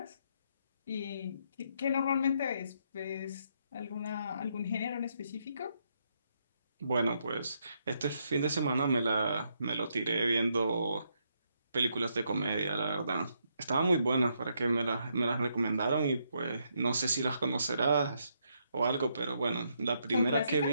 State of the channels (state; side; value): inverted; both; correlation -0.76